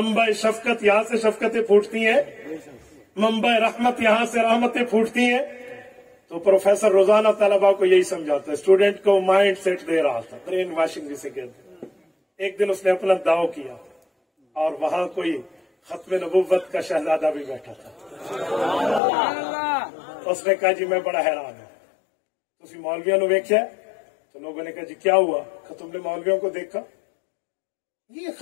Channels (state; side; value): drops out; right; at 19.0 s